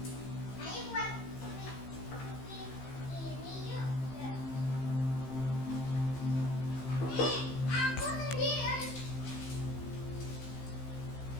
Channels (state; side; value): late; right; 15 ms